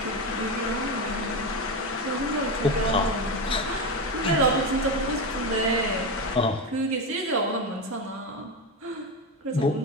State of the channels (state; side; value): normal; both; correlation 0.16